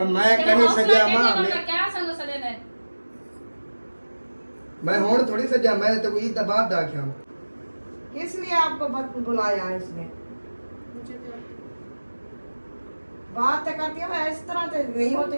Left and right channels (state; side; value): inverted; both; correlation -1.00